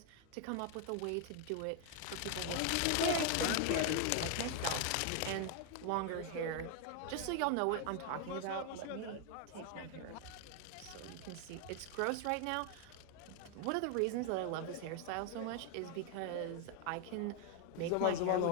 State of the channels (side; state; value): both; different; correlation 0.00